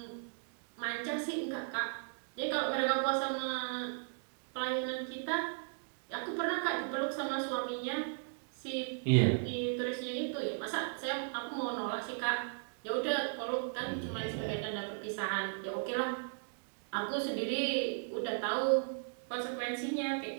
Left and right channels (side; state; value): left; silent; digital silence